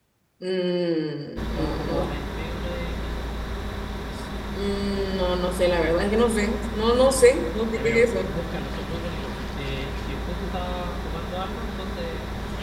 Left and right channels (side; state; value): both; identical; correlation 1.00